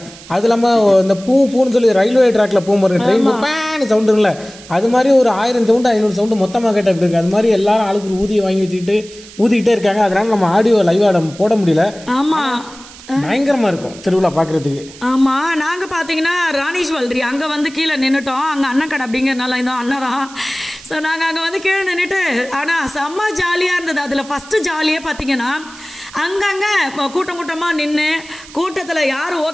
அது இல்லாமல் இந்த பூன்னு சொல்லி ரயில்வே ட்ராக்ல போகும்போது ட்ரெயின் பேன் சவுண்டு இருக்குல்ல, அது மாதிரி ஒரு 1000 சவுண்டு 500 சவுண்டு மொத்தமாக கேட்டால் எப்படி இருக்கு? அது மாதிரி எல்லாரும் ஆளுக்கு ஒரு ஊதியை வாங்கி வச்சுக்கிட்டு ஊதிக்கிட்டே இருக்காங்க. அதனால நம்ம ஆடியோ லைவ் ஆட போட முடியல. ஆமா, பயங்கரமா இருக்கும் திருவிழா பாக்குறதுக்கு. ஆமா, நாங்க பாத்தீங்கன்னா ராணீஸ்வல்ரி அங்க வந்து கீழே நின்னுட்டோம். அங்க அண்ணன் கடை அப்படிங்கறதுனால இந்த அண்ணன் தான். ஸோ நாங்கள் அங்கே வந்து கீழே நின்றுட்டு ஆனால் செம்ம ஜாலியாக இருந்தது. அதில் ஃபஸ்ட்டு ஜாலியே பார்த்தீங்கன்னா அங்கங்கே கூட்டம் கூட்டமாக நின்று கூட்டத்தில் யார்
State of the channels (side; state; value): right; noise; hiss, 19 dB below the sound